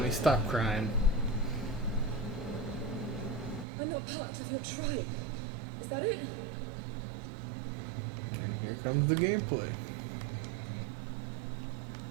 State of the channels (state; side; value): drops out; left; at 3.7 s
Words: stop crying. I'm not part of your tribe. Is that it? And here comes the gameplay.